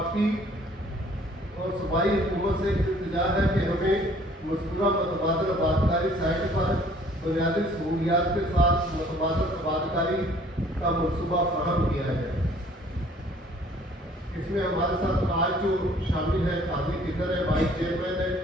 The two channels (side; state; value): both; normal; correlation 0.57